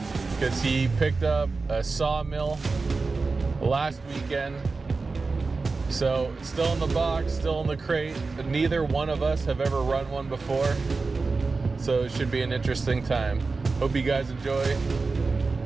because he picked up a Sawmill last weekend. So it's still in the box, still in the crate. Neither one of us have ever run one before, so it should be an interesting time. Hope you guys enjoy,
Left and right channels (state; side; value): quieter; left; 4.0 dB